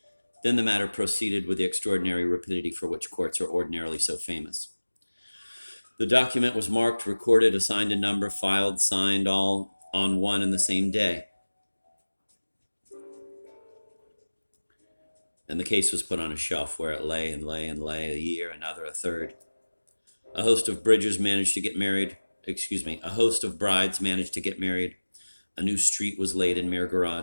Then the matter proceeded with the extraordinary rapidity for which courts are ordinarily so famous. The document was marked, recorded, assigned a number, filed, signed, all on one and the same day. And the case was put on a shelf where it lay and lay and lay, a year, another, a third. A host of brides managed to get married. A new street was laid in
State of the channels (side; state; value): both; inverted; correlation -1.00